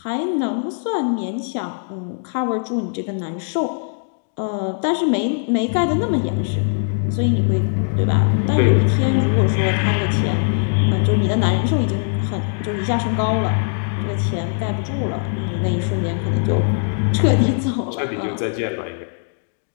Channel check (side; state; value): right; silent; digital silence